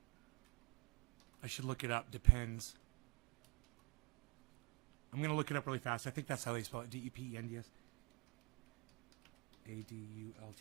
I should look it up. Depends. I'm going to look it up really fast. I think that's how they spell it. D-E-P-E-N-D-S.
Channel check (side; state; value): left; quieter; 30.0 dB